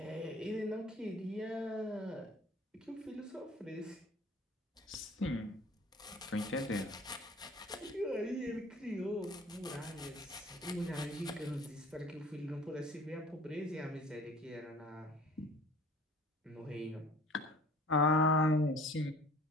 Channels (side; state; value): both; normal; correlation 0.48